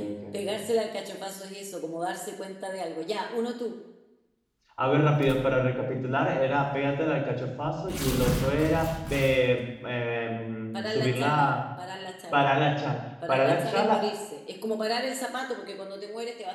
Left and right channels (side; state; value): both; identical; correlation 1.00